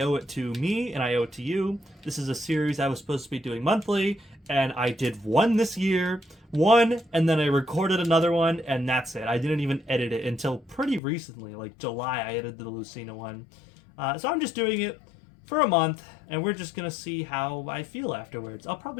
owe it to me and I owe it to you. This is a series I was supposed to be doing monthly, and I did one this year, and then I recorded another one, and that's it. I didn't even edit it until pretty recently, like July. I edited the Lucina one. So I'm just doing it for a month, and we're just gonna see how I feel afterwards. I'll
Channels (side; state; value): right; drops out; at 11.0 s